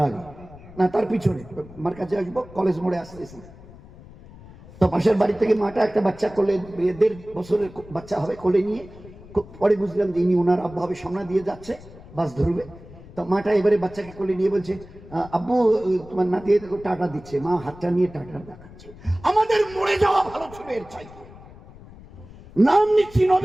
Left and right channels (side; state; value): left; noise; rumble, 19 dB below the sound